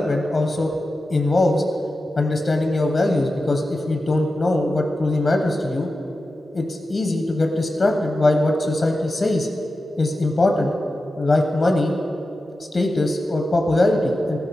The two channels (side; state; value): both; normal; correlation 0.92